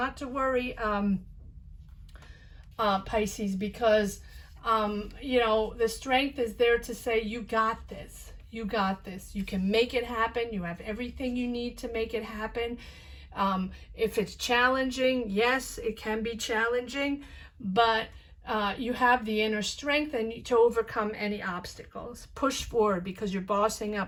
to worry, Pisces, because you know, the strength is there to say, you got this, you can make it happen. You have everything you need to make it happen. If it's challenging, yes, it can be challenging, but you have the inner strength and to overcome any obstacles. Push forward, because you're bossing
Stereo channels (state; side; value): identical; both; correlation 1.00